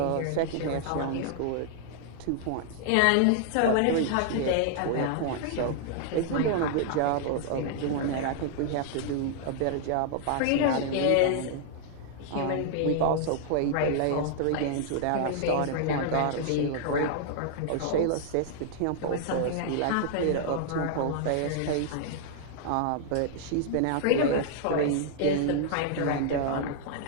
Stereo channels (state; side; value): different; both; correlation -0.01